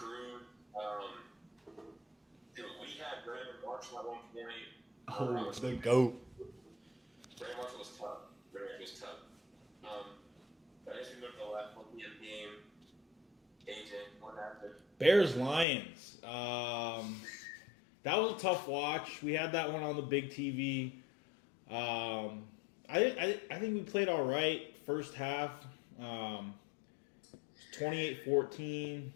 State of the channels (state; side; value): drops out; right; at 15.7 s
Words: Dude, we had Brandon Marshall Marshall at one point. Oh, the GOAT. Brandon Marshall was tough. But as we go to the last 1 p.m. game, AJ, what happened? Bears Lions. That was a tough watch. We had that one on the big TV. I think we played all right first half. 28-14.